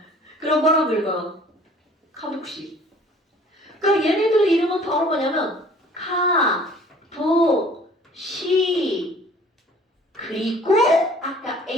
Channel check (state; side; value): normal; both; correlation 0.52